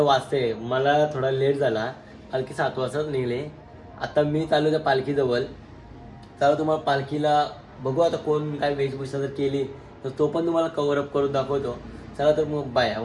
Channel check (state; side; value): identical; both; correlation 1.00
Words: वाजते, मला थोडा लेट झाला, पालखी 7 वाजता निघली। आता मी चालू त्या पालखीजवळ, चला तुम्हाला पालखीला बघू आता कोण काय वेशभूषा जर केली तर तो पण तुम्हाला कव्हर अप करून दाखवतो। चला तर मग बाय,